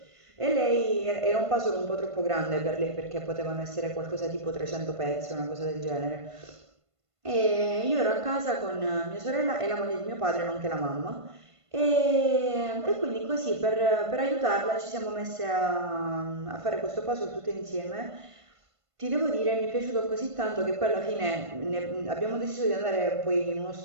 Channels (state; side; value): late; left; 1.5 ms